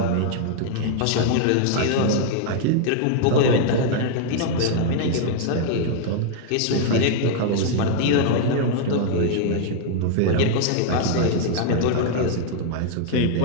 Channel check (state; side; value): different; both; correlation -0.01